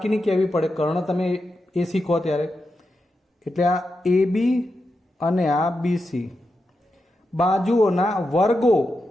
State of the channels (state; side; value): normal; both; correlation 0.88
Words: કહેવી પડે, કર્ણ તમે એસી કહો ત્યારે। એટલે આ એબી અને આ બીસી બાજુઓના વર્ગો